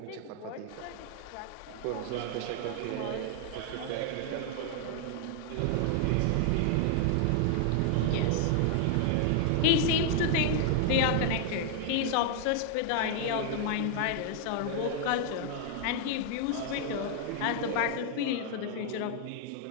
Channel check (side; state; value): both; different; correlation 0.00